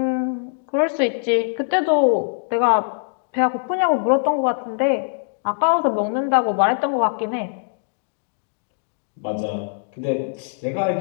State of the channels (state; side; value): silent; right; digital silence